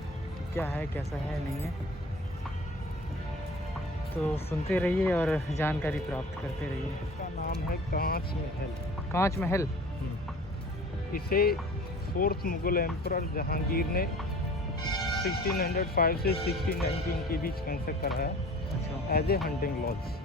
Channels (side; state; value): both; normal; correlation 0.44